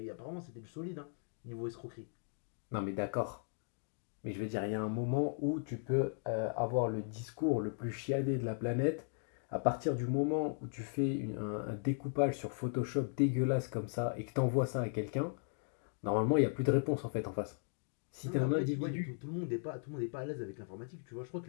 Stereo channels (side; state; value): right; silent; digital silence